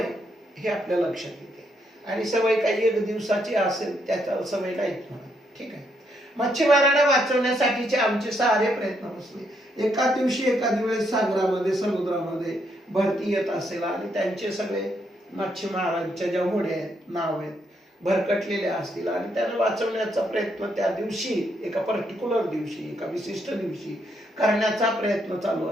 हे आपल्या लक्षात येते, आणि सवय काही एक दिवसाची असेल त्याच्या सवय नाहीत म्हणा. ठीक आहे. मच्छीमारांना वाचवण्यासाठीचे आमचे सारे प्रयत्न बसले. एका दिवशी एखाद्या वेळेस सागरामध्ये समुद्रामध्ये भरती येत असेल आणि त्यांचे सगळे मच्छीमारांच्या ज्या होड्या आहेत, नाव आहेत, भरकटलेल्या असतील आणि त्यांना वाचवण्याचा प्रयत्न त्या दिवशी, एका पर्टिक्युलर दिवशी, एका विशिष्ट दिवशी करण्याचा प्रयत्न चालू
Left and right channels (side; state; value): both; normal; correlation 0.76